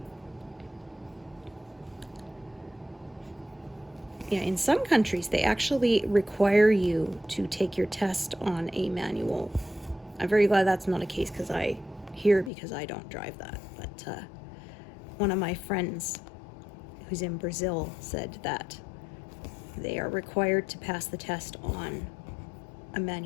Yeah, in some countries, they actually require you to take your test on a manual. I'm very glad that's not a case because I don't drive that. But one of my friends who's in Brazil said that they are required to pass the test on a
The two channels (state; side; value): drops out; right; at 12.5 s